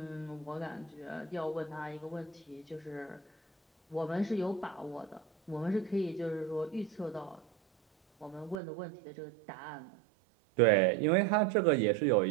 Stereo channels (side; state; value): left; drops out; at 8.6 s